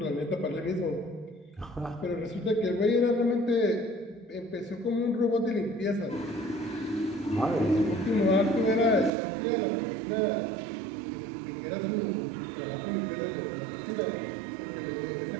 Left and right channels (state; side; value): drops out; left; at 9.1 s